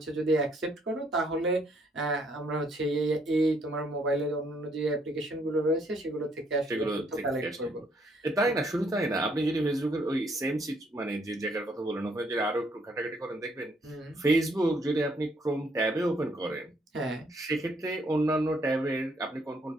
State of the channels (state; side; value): normal; both; correlation 0.69